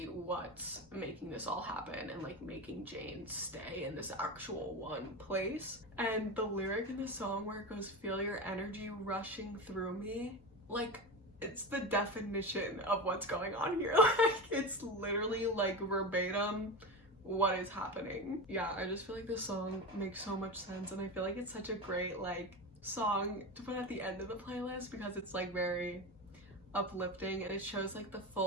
what's making this all happen and like making Jane stay in this actual one place. And the lyric in the song where it goes, feel your energy rushing through me, like it's the definition of what's going on here. Like, it's literally like verbatim what is happening. Yeah, I just feel like this song makes so much sense, and I feel like it's such a great like song to put at the end of the playlist because it's like very uplifting and it shows like the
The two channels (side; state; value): both; normal; correlation 0.22